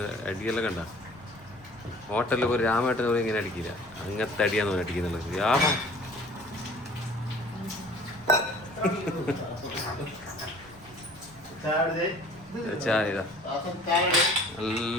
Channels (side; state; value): left; noise; rumble, 24 dB below the sound